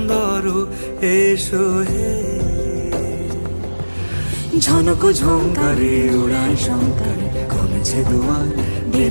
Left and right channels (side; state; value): both; inverted; correlation -1.00